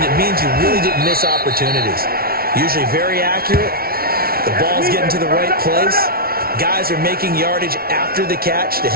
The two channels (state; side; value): late; left; 0.44 ms